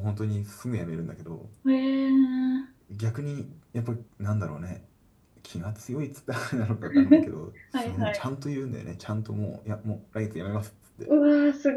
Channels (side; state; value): both; identical; correlation 1.00